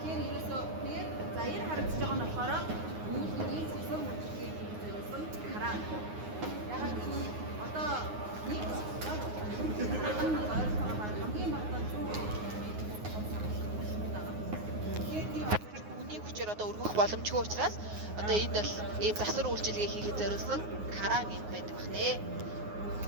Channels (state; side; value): late; left; 9.5 ms